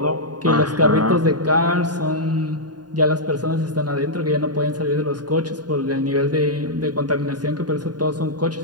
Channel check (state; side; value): late; left; 0.70 ms